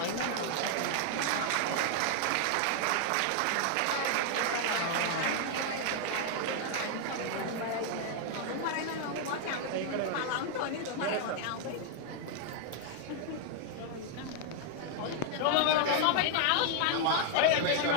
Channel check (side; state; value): both; different; correlation 0.00